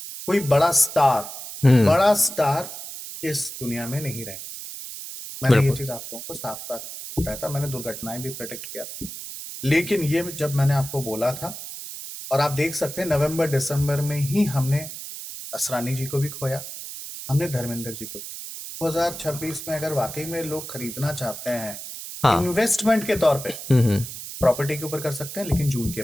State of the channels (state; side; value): noise; right; hiss, 10 dB below the sound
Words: हम्म। बड़ा स्टार इस दुनिया में नहीं रहे। मैंने ये बिल्कुल। चीज आप लोगों को साफ साफ बताया था, मैंने दुर्घटनाएं भी प्रेडिक्ट किया था। लेकिन ये जब मैंने आपको बोला था, और आप देख सकते हैं नवंबर दिसंबर में ही हमने असरानी जी को भी खोया, हमने धर्मेंद्र जी को भी। 2026 में अगर वाकई में लोग खरीदना चाहते हैं हाँ। इन्वेस्टमेंट के तौर पे, हम्म। प्रॉपर्टी के ऊपर कर सकते हैं, लेकिन जून के